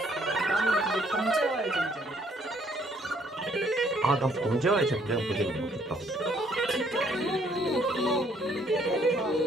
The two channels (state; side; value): normal; both; correlation 0.65